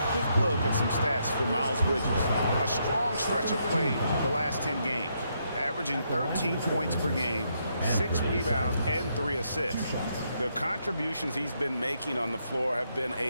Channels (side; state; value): both; inverted; correlation -0.77